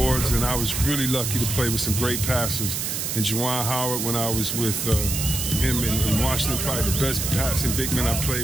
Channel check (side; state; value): right; noise; hiss, 2 dB below the sound